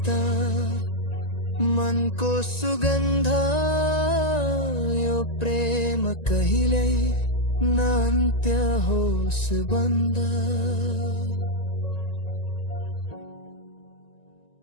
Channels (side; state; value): right; late; 1.9 ms